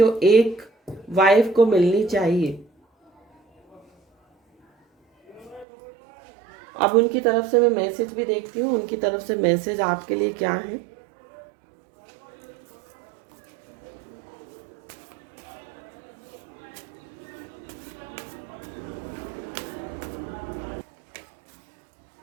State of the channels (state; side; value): drops out; left; at 5.7 s